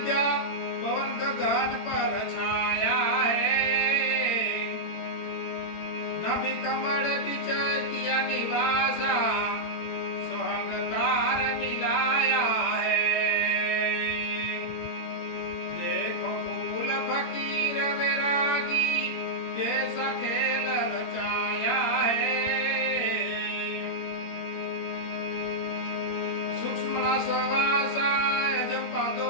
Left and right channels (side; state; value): right; late; 17 ms